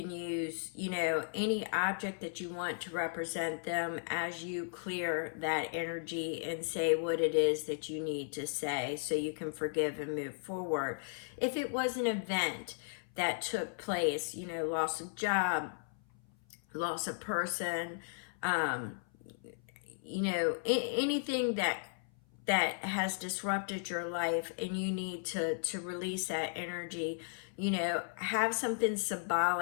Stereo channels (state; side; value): silent; right; 54 dB below the other